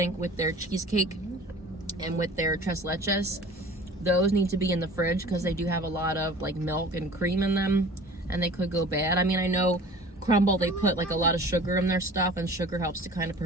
with their cheesecake and with their tres leches, those need to be in the fridge because they do have a lot of like milk and cream in them and they could go bad. I mean, I know Crumbl, they put like a lot of sugar in their stuff and sugar helps to kind of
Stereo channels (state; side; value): normal; both; correlation 0.44